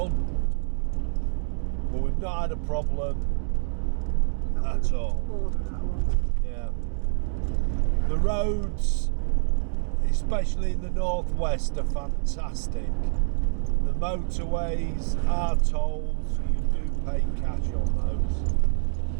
But we've not had a problem at all. Yeah. The roads, especially in the northwest, are fantastic. The motorways, our tolls, you do pay cash on those.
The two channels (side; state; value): left; silent; digital silence